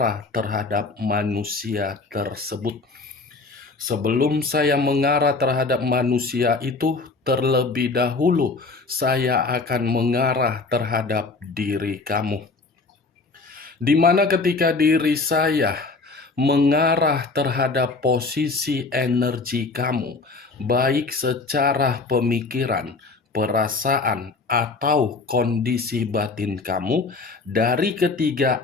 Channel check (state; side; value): quieter; right; 3.8 dB